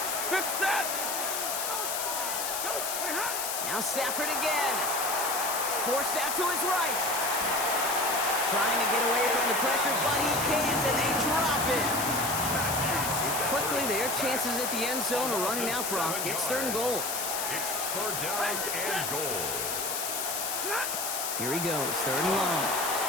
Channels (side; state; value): left; noise; hiss, 2 dB below the sound